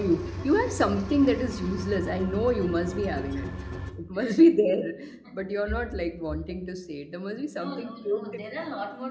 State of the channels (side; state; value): both; identical; correlation 1.00